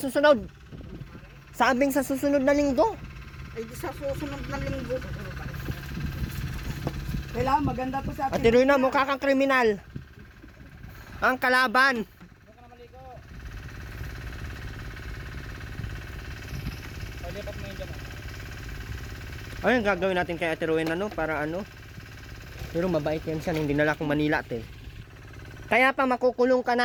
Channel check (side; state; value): both; identical; correlation 1.00